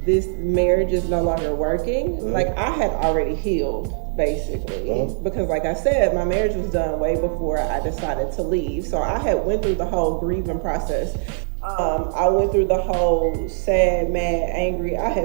this marriage is no longer working, like I had already healed. Basically, because like I said, my marriage was done way before I decided to leave. So I had went through the whole grieving process. I went through the whole sad, mad, angry. I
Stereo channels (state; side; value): silent; left; digital silence